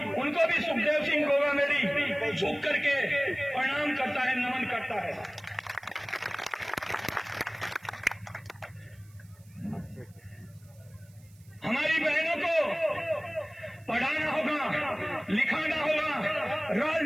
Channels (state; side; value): noise; right; hiss, 29 dB below the sound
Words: उनको भी सुखदेव सिंह गोगामेडी झुक करके प्रणाम करता है, नमन करता है। हमारी बहनों को पढ़ाना होगा, लिखाना होगा,